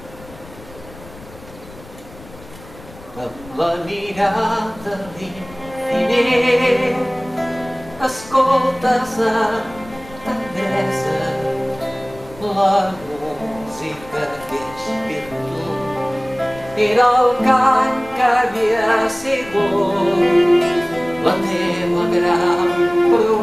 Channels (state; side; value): noise; left; rumble, 19 dB below the sound